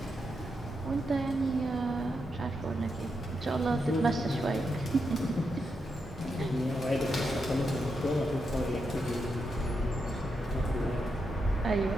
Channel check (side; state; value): both; normal; correlation 0.84